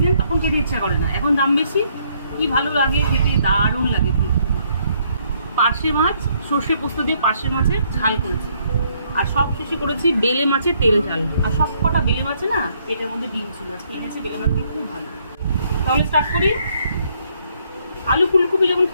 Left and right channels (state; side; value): inverted; both; correlation -0.69